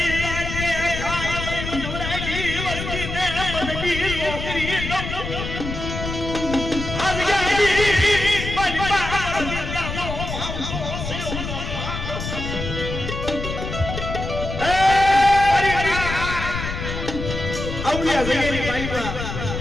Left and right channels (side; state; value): left; noise; rumble, 5 dB below the sound